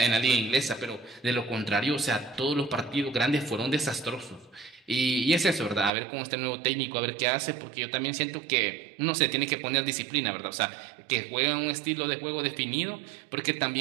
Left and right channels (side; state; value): left; drops out; at 5.9 s